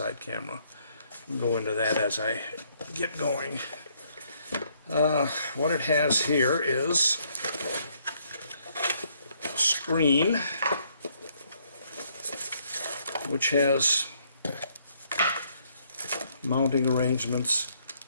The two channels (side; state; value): both; inverted; correlation -0.69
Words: camera. I'll go into that as I get going. What it has here is a screen which has mounting arrangements